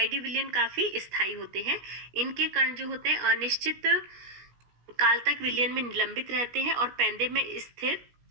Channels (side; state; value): left; late; 17 ms